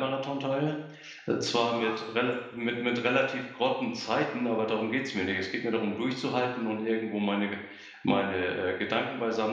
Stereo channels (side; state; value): both; identical; correlation 1.00